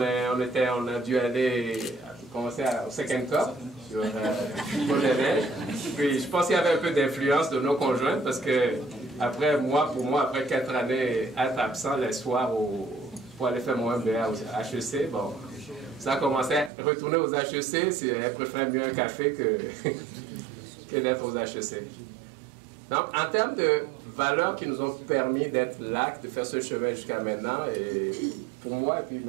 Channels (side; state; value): left; drops out; at 16.7 s